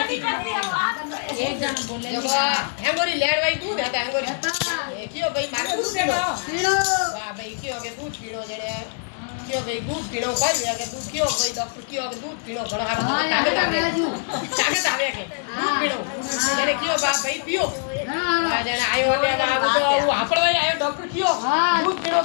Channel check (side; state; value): right; silent; 63 dB below the other